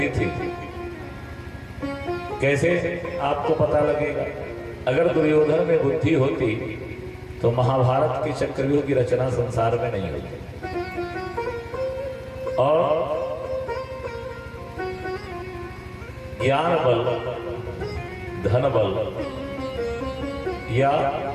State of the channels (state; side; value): identical; both; correlation 1.00